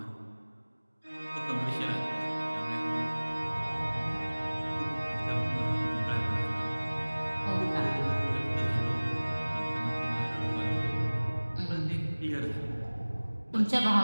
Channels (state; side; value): inverted; both; correlation -1.00